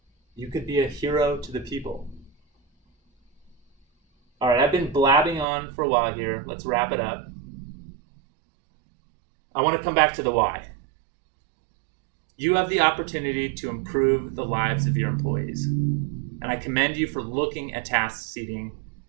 You could be a hero to the people. All right, I've been blabbing on for a while here. Let's wrap it up. I want to come back to the why. You have the opportunity to improve the lives of your employees. And I commend you for looking at task seating,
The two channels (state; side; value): drops out; left; at 5.5 s